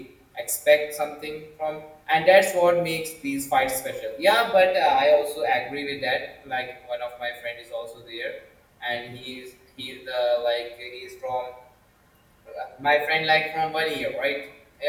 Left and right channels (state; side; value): identical; both; correlation 1.00